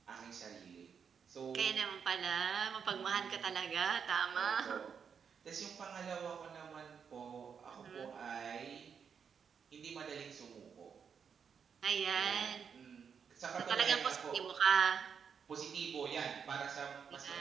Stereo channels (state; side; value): quieter; left; 6.8 dB